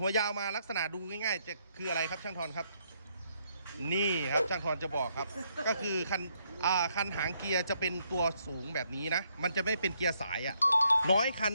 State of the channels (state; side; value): inverted; both; correlation -0.74